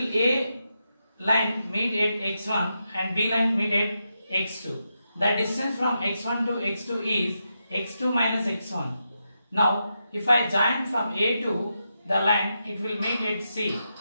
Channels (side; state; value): both; inverted; correlation -0.86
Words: A line meet at x1 and B line meet at x2. The distance from x1 to x2 is x2 minus x1. Now, if I join from A to the line, it will meet at C.